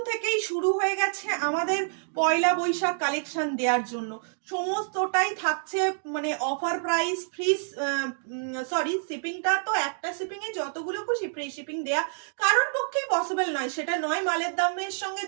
থেকেই শুরু হয়ে গেছে আমাদের পয়লা বৈশাখ কালেকশন দেওয়ার জন্য। সমস্তটাই থাকছে মানে অফার প্রাইস, ফ্রি, সরি, শিপিংটা তো একটা শিপিং এ যতগুলো খুশি ফ্রি শিপিং দেয়া কারোর পক্ষেই পসিবল নয়। সেটা নয় মালের দামের সঙ্গে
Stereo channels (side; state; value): left; silent; digital silence